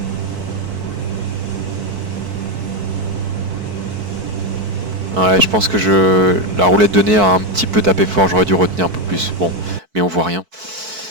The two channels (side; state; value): left; late; 4.6 ms